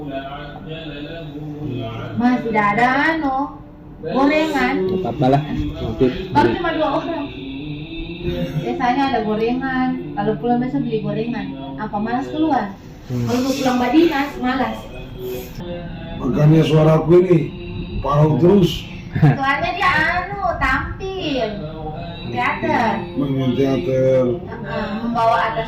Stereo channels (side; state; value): both; identical; correlation 1.00